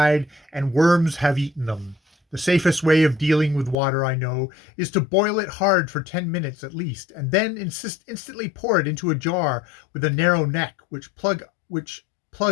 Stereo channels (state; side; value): drops out; right; at 3.8 s